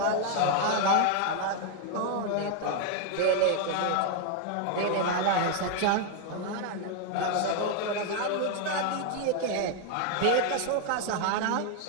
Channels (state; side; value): different; both; correlation 0.00